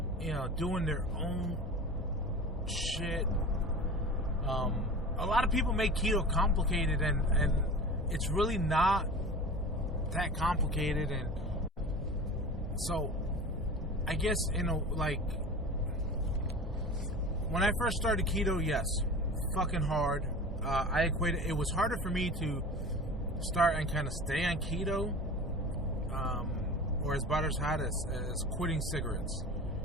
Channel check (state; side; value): normal; both; correlation 0.35